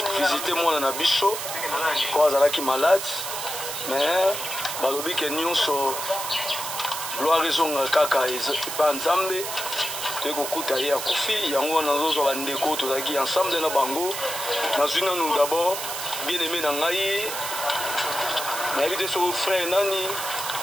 visiter mwana na biso po azalaki malade mais balobi ke nyonso gloire ezonga kaka epa nzambe toyei kokuta ye akufi yango wana nazozwa bandeko tozalaki ensemble na bango nazwi nanu d'abord bien aimé na ngai nayebi te so frère nani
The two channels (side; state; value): right; noise; hiss, 5 dB below the sound